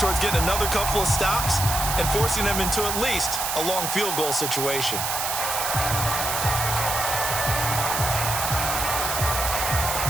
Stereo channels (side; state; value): right; noise; hiss, 1 dB below the sound